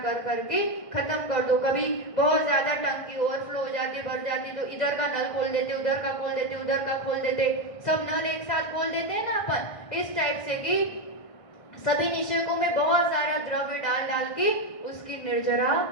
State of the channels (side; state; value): right; late; 1.5 ms